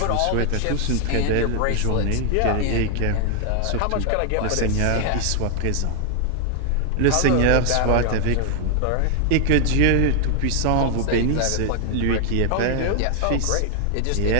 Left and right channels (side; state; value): both; different; correlation 0.00